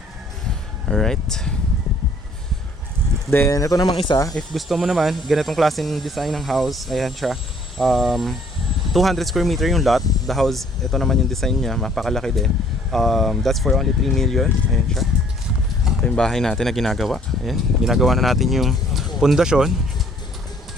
Alright. Then, ito namang isa. If gusto mo naman, ganitong klaseng design ng house. Ayan siya. 200 square meter yung lot. The house, ito naman yung design niya. Mapakalaki din. That's for only 3 million. Ayan siya. Ito yung bahay natin na ginagawa. Ayan. Ginagawa na natin yung pundasyon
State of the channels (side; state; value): both; normal; correlation 0.60